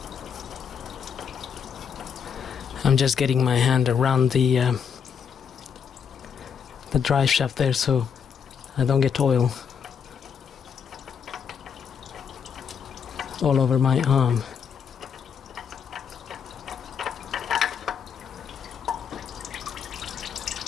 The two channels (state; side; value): quieter; right; 7.1 dB